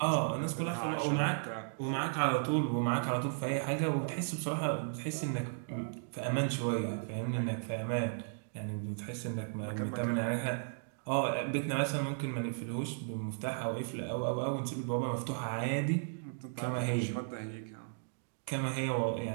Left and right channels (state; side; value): silent; left; digital silence